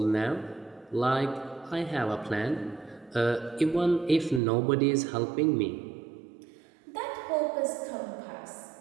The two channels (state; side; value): drops out; left; at 4.4 s